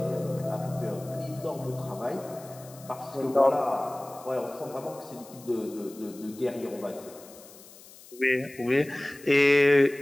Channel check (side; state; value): left; noise; hiss, 20 dB below the sound